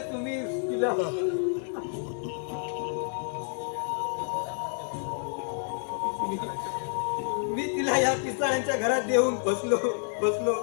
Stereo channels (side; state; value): right; silent; 58 dB below the other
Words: तुम्ही तिला मी तिला या पिसाळ्यांच्या घरात देऊन बसलो.